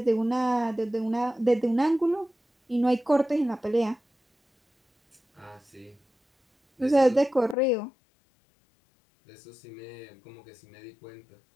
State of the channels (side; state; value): right; drops out; at 7.6 s